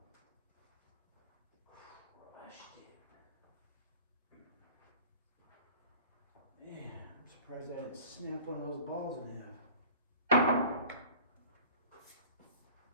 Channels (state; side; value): inverted; both; correlation -0.44